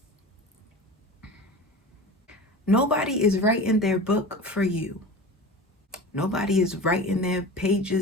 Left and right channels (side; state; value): both; normal; correlation 0.33